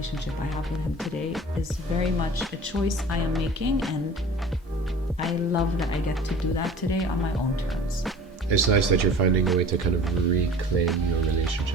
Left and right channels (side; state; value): both; normal; correlation 0.43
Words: I have with him today is very much a choice I am making, and I love that I get to do that today on my own terms. It's nice that you're finding a way to kind of reclaim your